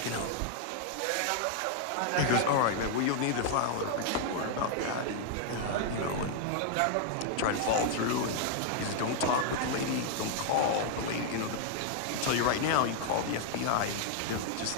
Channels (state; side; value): different; both; correlation 0.00